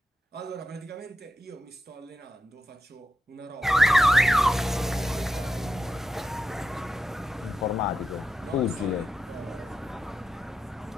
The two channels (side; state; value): both; normal; correlation 0.88